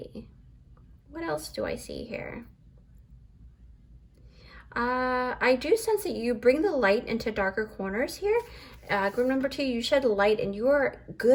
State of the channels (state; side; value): identical; both; correlation 1.00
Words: what else do I see here? I do sense that you bring the light into darker corners here. Group number 2, you shed light, and you are